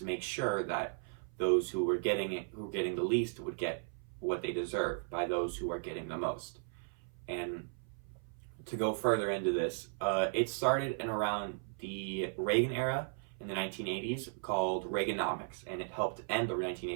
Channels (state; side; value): silent; left; 54 dB below the other